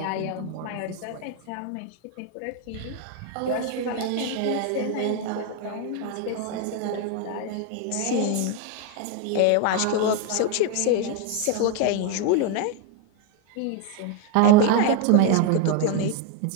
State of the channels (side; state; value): both; different; correlation 0.01